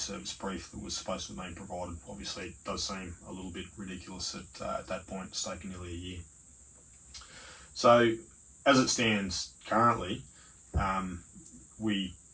Service brief that was supposed to have been provided. Obviously, it does seem a little bit ridiculous at that point. It's taken nearly a year. So, as it stands currently, we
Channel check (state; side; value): identical; both; correlation 1.00